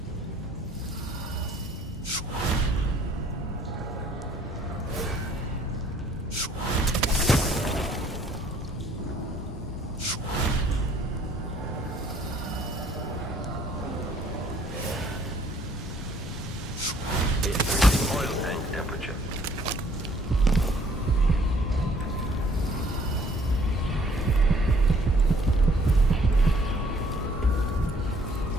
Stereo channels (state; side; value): normal; both; correlation 0.60